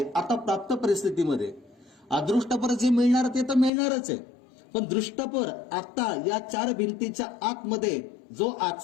आता प्राप्त परिस्थितीमध्ये अदृष्टपर जे मिळणार ते तर मिळणारच आहे. पण दृष्टपर आता या चार भिंतीच्या आतमध्ये जो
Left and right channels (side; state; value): right; drops out; at 3.7 s